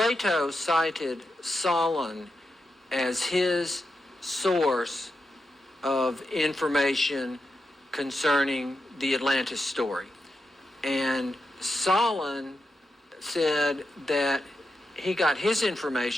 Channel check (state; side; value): normal; both; correlation 0.87